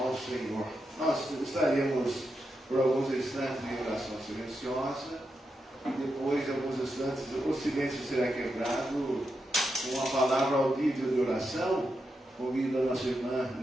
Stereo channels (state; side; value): normal; both; correlation 0.86